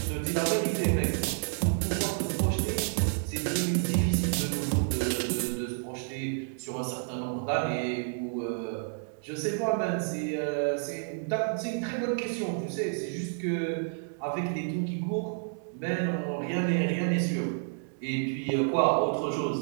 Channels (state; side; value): silent; left; 56 dB below the other